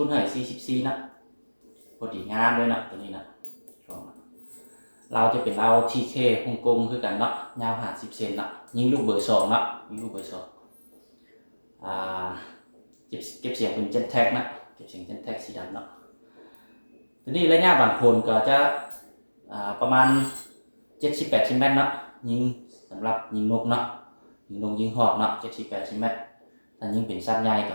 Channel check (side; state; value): both; inverted; correlation -1.00